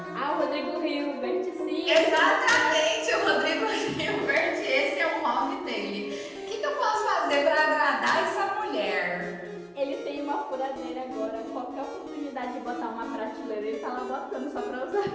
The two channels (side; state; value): both; identical; correlation 1.00